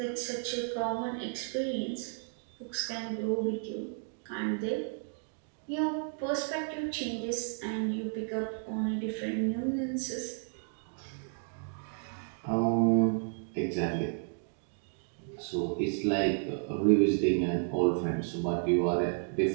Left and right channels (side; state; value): left; silent; 56 dB below the other